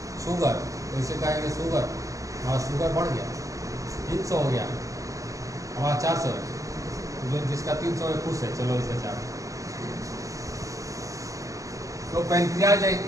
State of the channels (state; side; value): late; left; 0.16 ms